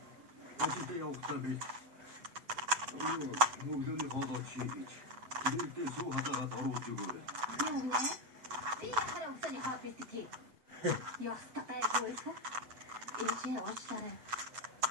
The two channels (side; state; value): left; late; 8.1 ms